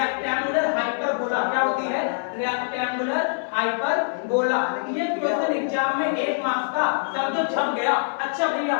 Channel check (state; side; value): silent; right; 60 dB below the other